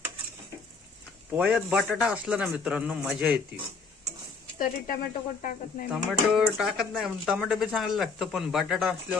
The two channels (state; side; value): quieter; right; 4.6 dB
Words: पोह्यात बटाटा असला ना मित्रांनो, मजा येते. तरी टोमॅटो कोण टाकत नाही. टोमॅटो टाकत नाही, टोमॅटो बी चांगलं लागतं, पण बटाटा